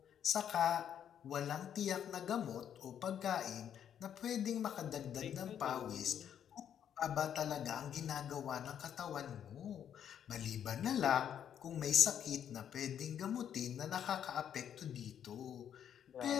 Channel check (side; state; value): right; quieter; 9.2 dB